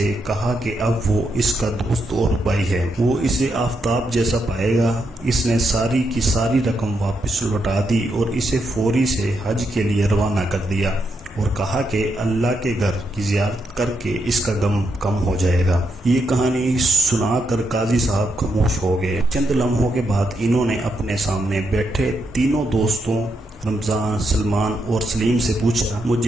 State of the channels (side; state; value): both; normal; correlation 0.81